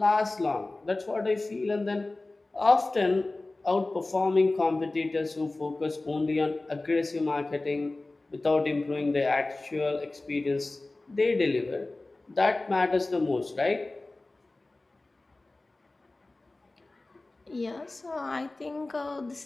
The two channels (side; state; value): right; quieter; 3.0 dB